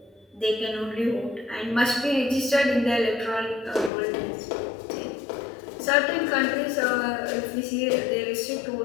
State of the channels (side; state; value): right; drops out; at 3.9 s